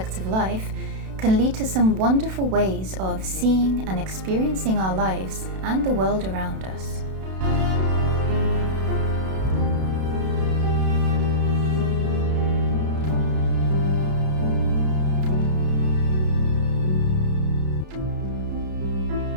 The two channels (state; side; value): late; left; 32 ms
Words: of life can lead to some wonderful ways of seeing and experiencing our lives and the world around us.